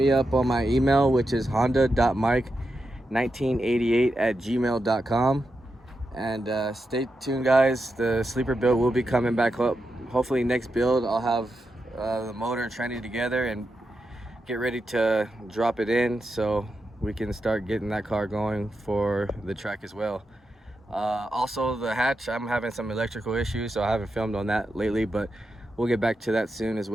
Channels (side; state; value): both; normal; correlation 0.87